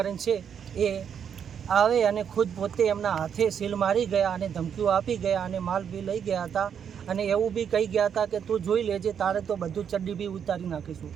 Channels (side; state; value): left; quieter; 7.9 dB